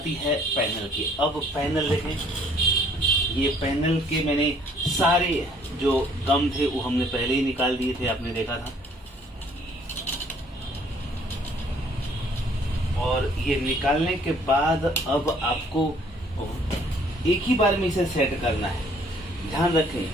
है पैनल की। अब पैनल देखें, ये पैनल के मैंने सारे जो गम थे वो हमने पहले ही निकाल दिए थे, आपने देखा था। और ये निकालने के बाद अब आपको एक ही बार में इसे सेट करना है। ध्यान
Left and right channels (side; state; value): both; normal; correlation 0.61